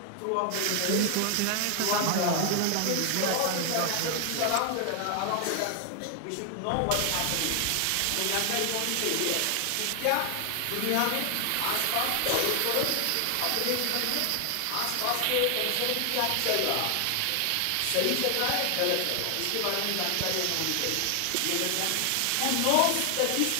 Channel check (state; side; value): different; both; correlation 0.00